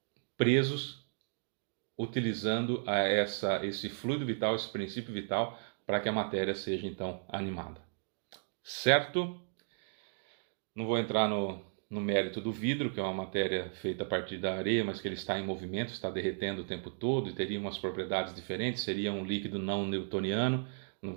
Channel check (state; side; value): silent; left; digital silence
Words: presos, utilizando esse fluido vital, esse princípio vital, para que a matéria seja então animada. Certo? Não vou entrar no mérito do vidro, que é uma matéria feita a partir da areia, mas que ele está em movimento, está derretendo o tempo todo e teria umas propriedades diferentes, seria um líquido não newtoniano. Não